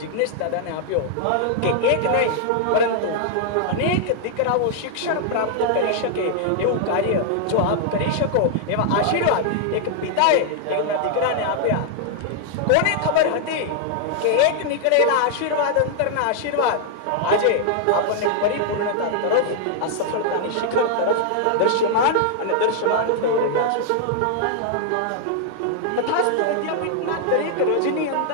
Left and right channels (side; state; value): both; different; correlation -0.01